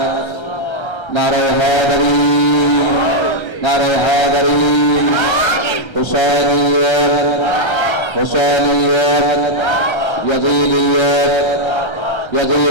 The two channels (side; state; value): right; late; 1.3 ms